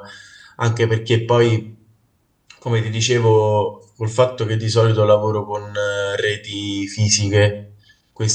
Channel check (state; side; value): identical; both; correlation 1.00